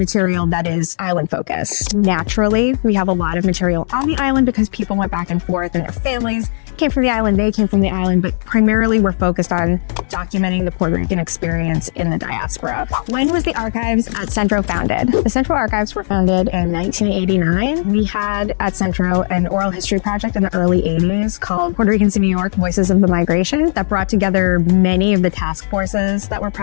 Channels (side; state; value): right; silent; 68 dB below the other